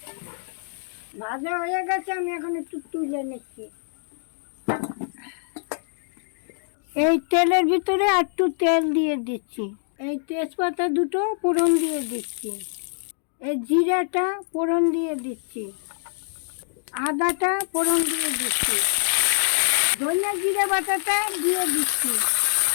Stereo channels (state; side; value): silent; right; digital silence